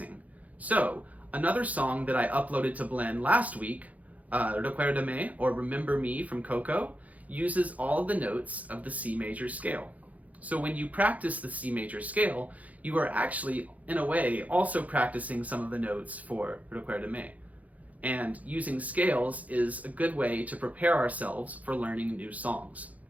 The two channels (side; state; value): left; late; 0.073 ms